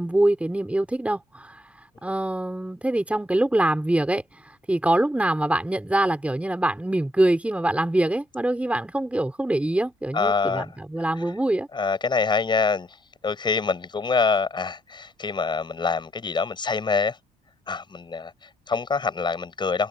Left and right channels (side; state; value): both; normal; correlation 0.75